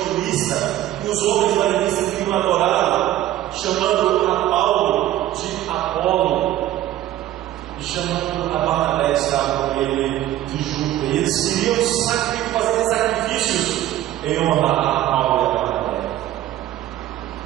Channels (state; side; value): quieter; left; 13.5 dB